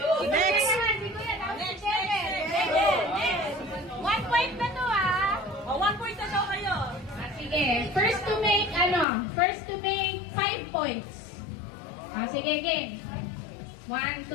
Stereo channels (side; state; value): right; drops out; at 9.1 s